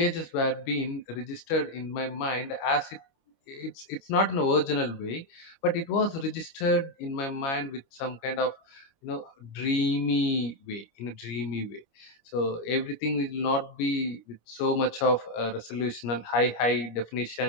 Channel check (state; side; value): late; right; 25 ms